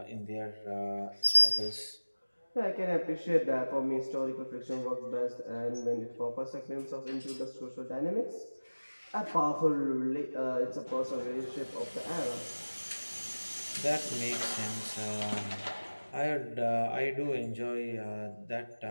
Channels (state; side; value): inverted; both; correlation -1.00